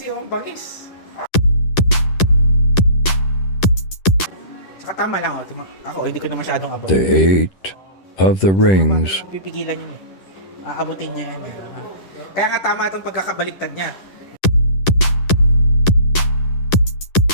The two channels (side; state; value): right; late; 10 ms